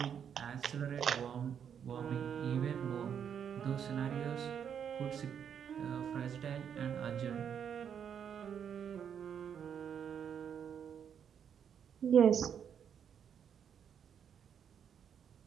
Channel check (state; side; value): quieter; left; 8.1 dB